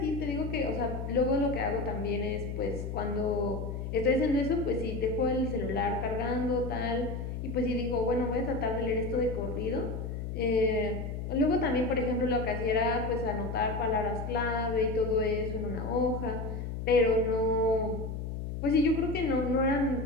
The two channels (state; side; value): noise; left; hum, 5 dB below the sound